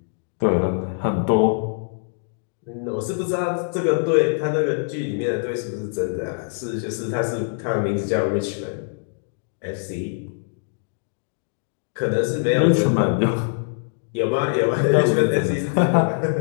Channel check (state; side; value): silent; right; digital silence